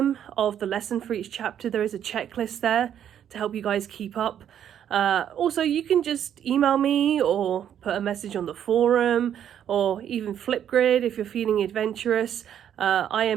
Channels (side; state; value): left; quieter; 9.7 dB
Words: of the lesson for each chapter. There is a checklist there to help you guys keep up. Also, you can just email me or put a message on the forum or even Flipgrid if you're feeling adventurous. I